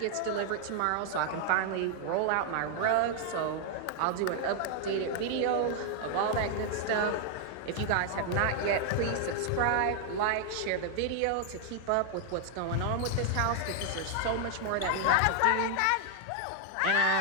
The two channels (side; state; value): both; different; correlation 0.00